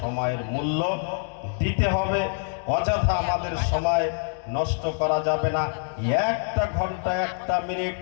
সময়ের মূল্য দিতে হবে। অযথা আমাদের সময় নষ্ট করা যাবে না। একটা ঘন্টা, একটা মিনিট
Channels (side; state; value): right; silent; digital silence